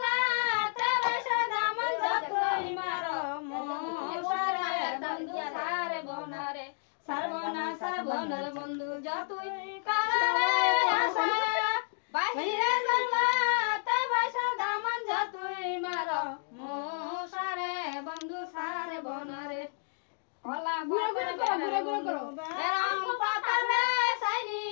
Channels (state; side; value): silent; right; digital silence